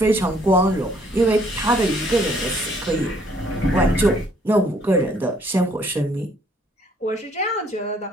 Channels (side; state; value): both; normal; correlation 0.64